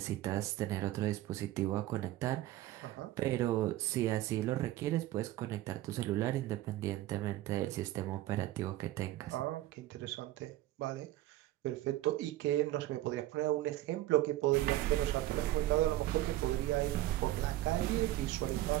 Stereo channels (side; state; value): left; quieter; 15.4 dB